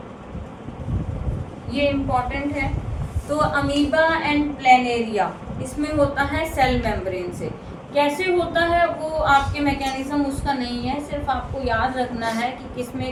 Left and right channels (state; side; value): identical; both; correlation 1.00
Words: ये इम्पॉर्टेंट है। तो अमीबा एंड प्लेनेरिया, इसमें होता है सेल मेम्ब्रेन से। कैसे होता है वो आपके मैकेनिज्म उसका नहीं है, सिर्फ आपको याद रखना है कि किस